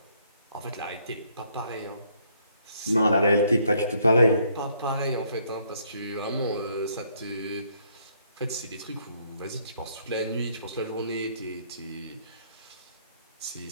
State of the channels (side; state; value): both; inverted; correlation -0.68